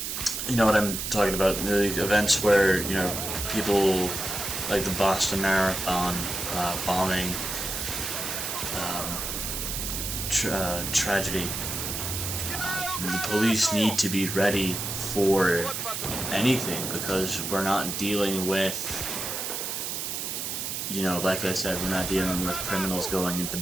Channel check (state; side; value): noise; right; hiss, 3 dB below the sound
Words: you know what I'm talking about, the events where, you know, people like the Boston Marathon bombing tragedy. The police need to be ready for anything, because we're not dealing with, you know, like I said, we're not dealing with criminals going into